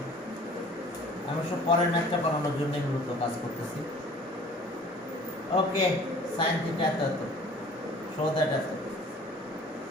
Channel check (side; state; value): both; normal; correlation 0.49